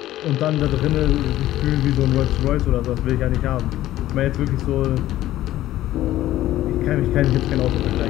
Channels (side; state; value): right; quieter; 14.4 dB